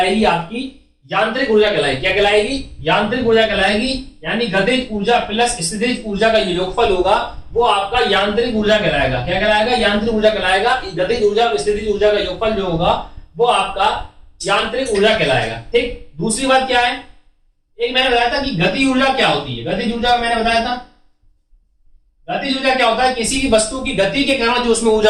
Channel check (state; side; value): identical; both; correlation 1.00